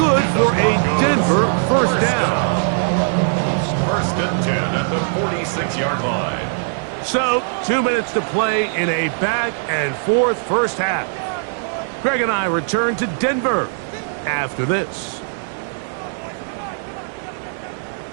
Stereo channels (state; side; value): silent; left; digital silence